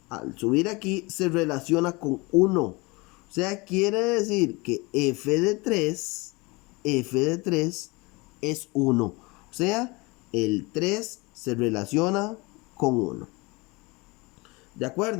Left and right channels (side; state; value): right; quieter; 25.4 dB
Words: al subir aquí, se relaciona con 1. O sea, quiere decir que f de 3 es 1. O sea, el 3 se relaciona con 1. ¿De